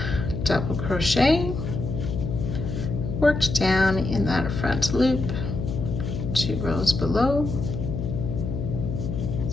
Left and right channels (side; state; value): left; noise; hum, 4 dB below the sound